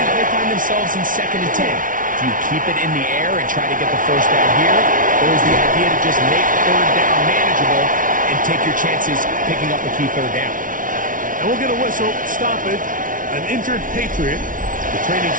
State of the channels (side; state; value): left; late; 0.38 ms